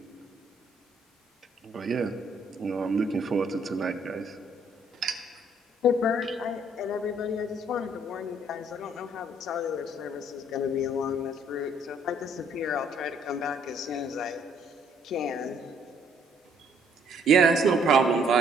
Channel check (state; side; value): normal; both; correlation 0.64